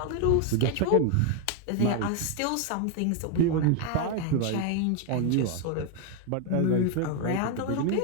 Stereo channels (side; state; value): both; different; correlation 0.01